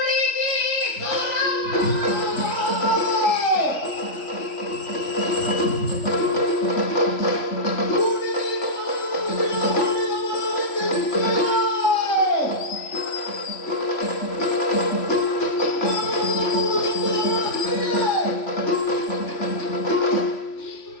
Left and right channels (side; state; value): right; late; 3.5 ms